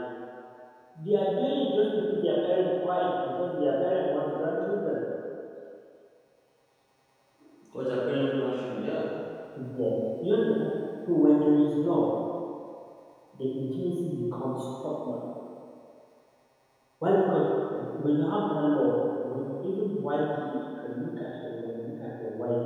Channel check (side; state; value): both; identical; correlation 1.00